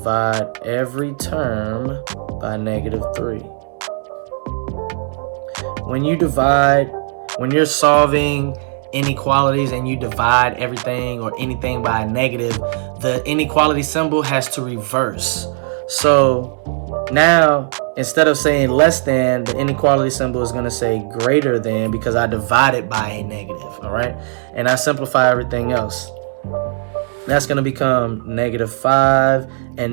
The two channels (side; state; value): left; silent; digital silence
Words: every term by negative 3. When you're solving inequalities and you divide everything or anything by a negative, the inequality symbol has to reverse. So now, instead of saying less than, the inequality symbol is going to say greater than, because I divided by a negative, all right? And I simplify everything else. That's going to become negative 5,